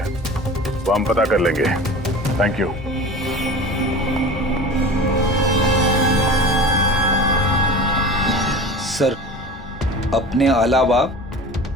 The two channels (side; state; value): both; normal; correlation 0.36